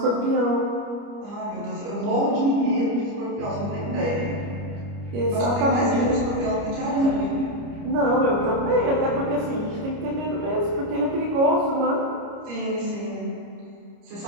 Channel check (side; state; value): left; late; 29 ms